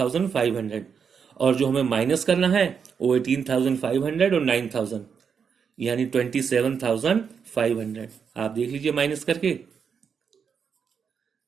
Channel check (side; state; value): left; quieter; 6.6 dB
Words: और जो हमें माइनस करना है वो 18,500 और 9,000, यानी 27,500। आप देख लीजिए माइनस करके